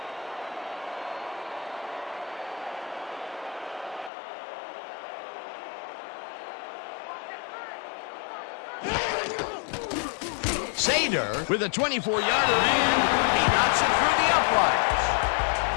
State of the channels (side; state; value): right; drops out; at 4.1 s